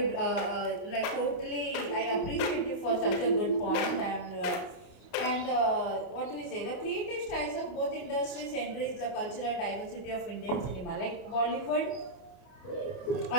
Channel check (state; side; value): late; right; 31 ms